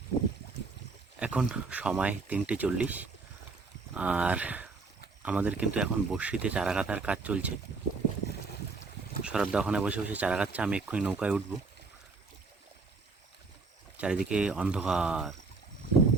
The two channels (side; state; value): left; quieter; 4.1 dB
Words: এখন সময় 3:40 আর আমাদের কিন্তু এখন বড়শিতে চারা গাঁথার কাজ চলছে। শরৎদা ওখানে বসে বসে চারা গাঁথছে, আমি এক্ষুনি নৌকায় উঠব। চারিদিকে অন্ধকার,